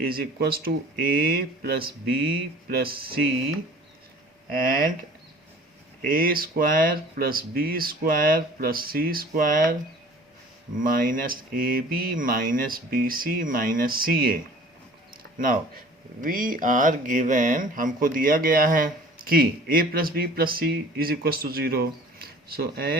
is equals to a plus b plus c and a square plus b square plus c square minus A B minus B C minus C a. Now we are given, हमको दिया गया है कि a plus b plus c is equals to 0. So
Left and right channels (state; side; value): normal; both; correlation 0.47